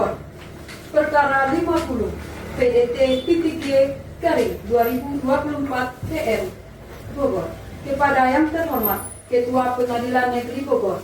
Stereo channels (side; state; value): both; identical; correlation 1.00